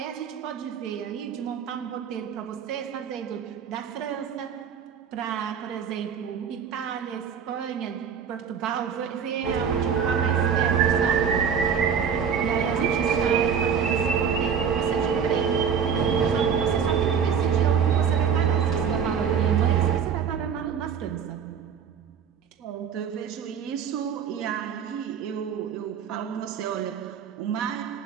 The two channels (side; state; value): left; quieter; 7.2 dB